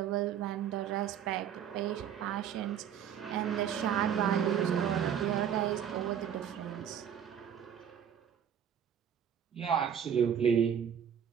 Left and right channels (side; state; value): left; quieter; 8.8 dB